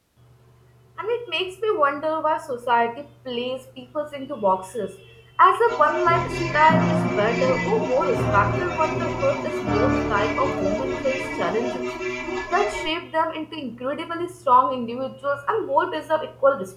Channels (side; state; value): both; identical; correlation 1.00